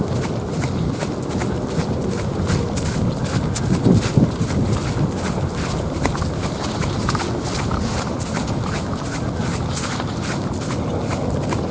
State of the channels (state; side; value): identical; both; correlation 1.00